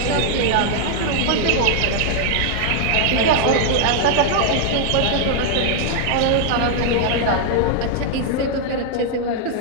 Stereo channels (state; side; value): different; both; correlation 0.00